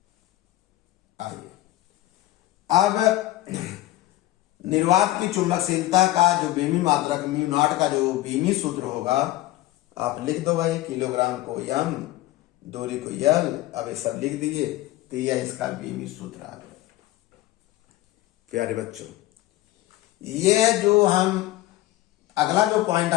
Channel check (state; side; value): quieter; right; 16.4 dB